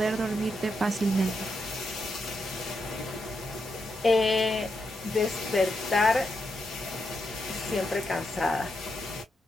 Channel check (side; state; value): both; normal; correlation 0.83